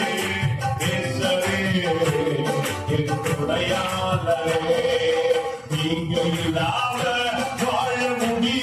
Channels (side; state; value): both; identical; correlation 1.00